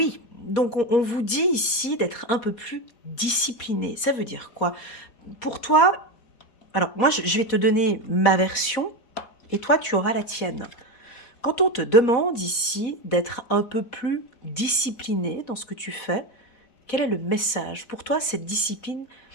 donc on vous dit ici d'être un peu plus discipliné. Ça veut dire quoi? Pour toi, alors moi je vais te donner ma version et toi tu auras la tienne. Quand on te demande ici d'être un peu plus discipliné dans ce que tu fais, quel est le message? Pour toi, cette discipline,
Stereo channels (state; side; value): late; right; 4.1 ms